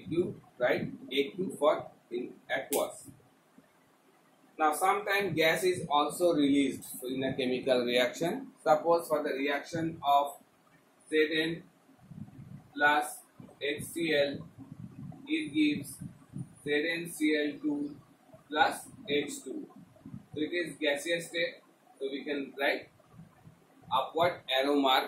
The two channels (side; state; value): both; identical; correlation 1.00